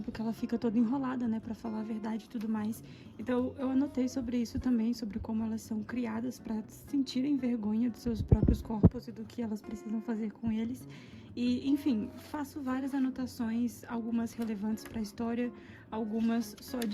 que ela fica toda enrolada, né, pra falar a verdade e tudo mais. Então eu anotei sobre isso também, sobre como elas são criadas pra sentirem vergonha dos seus próprios corpos e do que elas precisam fazer com eles. E, enfim, faço várias anotações, algumas relevantes pra história, algumas só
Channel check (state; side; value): identical; both; correlation 1.00